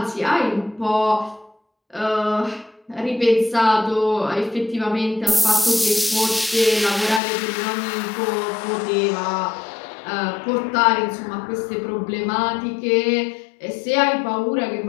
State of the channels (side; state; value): right; drops out; at 7.2 s